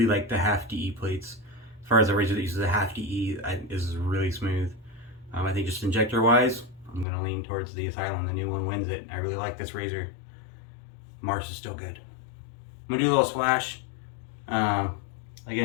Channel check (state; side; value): drops out; right; at 7.1 s